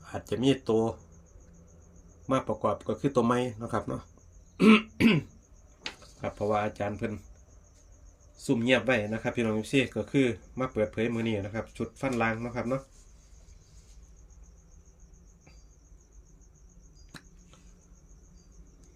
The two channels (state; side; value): identical; both; correlation 1.00